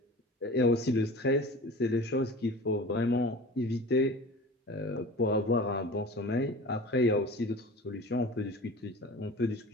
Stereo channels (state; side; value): normal; both; correlation 0.38